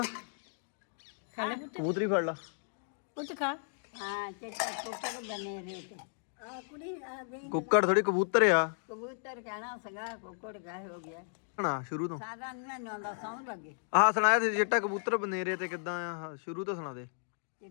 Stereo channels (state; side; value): silent; right; digital silence